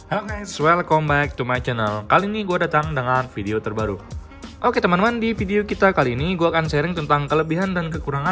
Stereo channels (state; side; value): identical; both; correlation 1.00